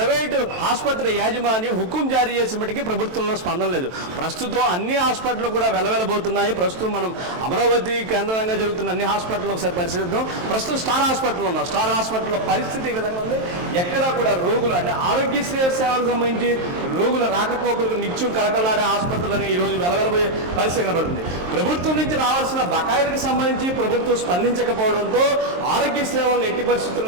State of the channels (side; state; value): left; late; 23 ms